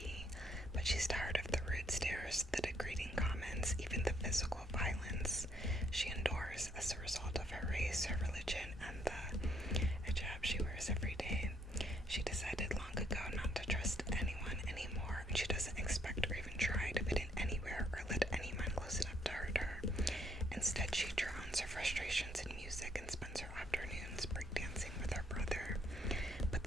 but she's tired of the rude stares, the degrading comments, even the physical violence she endures as a result of her race, her religion, and the hijab she wears every day. She decided long ago not to trust anyone anymore, and she doesn't expect or even try to fit in anywhere or let anyone close enough to hurt her. Instead, she drowns her frustrations in music and spends her afternoons breakdancing with her brother. But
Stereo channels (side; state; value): both; normal; correlation 0.71